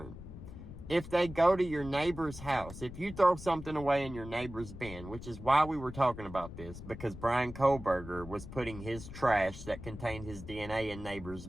if they go to your neighbor's house, if you throw something away in your neighbor's bin, which is why we were talking about this, because Bryan Kohberger was putting his trash that contained his DNA in neighbors'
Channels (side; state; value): left; noise; rumble, 12 dB below the sound